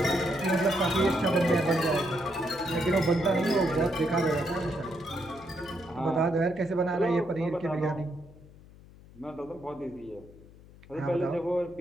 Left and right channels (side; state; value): left; noise; hum, 22 dB below the sound